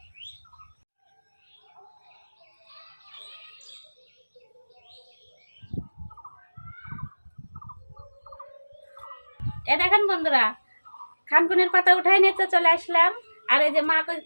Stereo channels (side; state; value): both; inverted; correlation -1.00